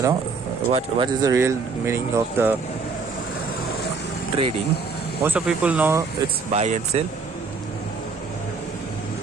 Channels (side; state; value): left; quieter; 4.6 dB